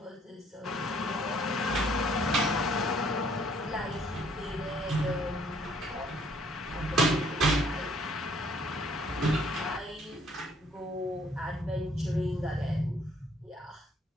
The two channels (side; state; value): both; normal; correlation 0.62